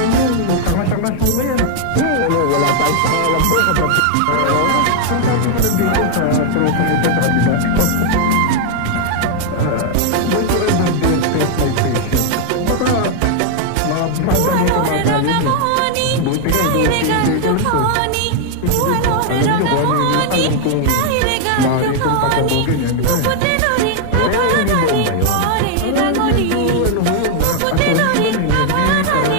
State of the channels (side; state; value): both; different; correlation 0.00